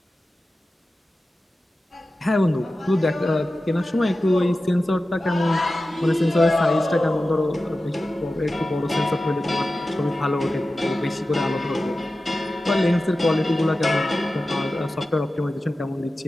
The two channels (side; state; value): both; normal; correlation 0.94